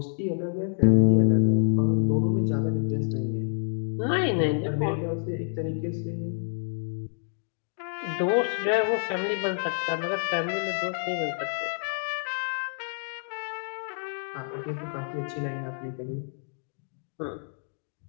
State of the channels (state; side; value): silent; right; digital silence